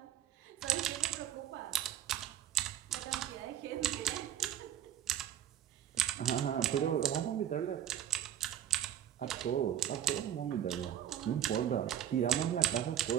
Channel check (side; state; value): left; quieter; 10.5 dB